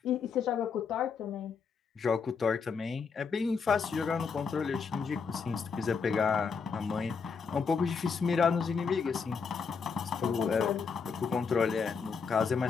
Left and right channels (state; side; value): quieter; right; 5.6 dB